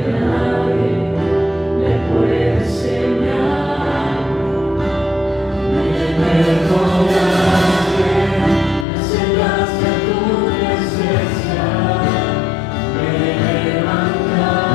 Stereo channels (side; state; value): right; drops out; at 8.8 s